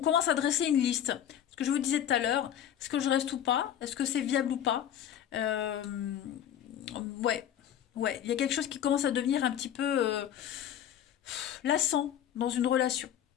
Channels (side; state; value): right; quieter; 10.1 dB